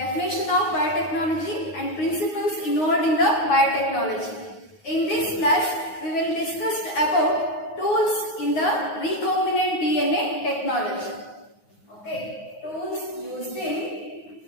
of biotechnology and principles involved in the biotechnology. In this class we will discuss about tools in the recombinant DNA technology. Okay, tools used in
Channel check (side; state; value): right; late; 9.5 ms